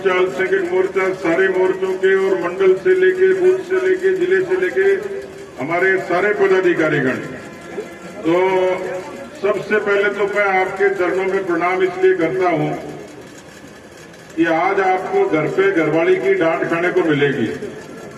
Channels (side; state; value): both; identical; correlation 1.00